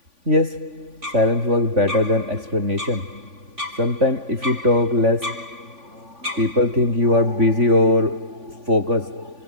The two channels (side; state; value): left; late; 3.5 ms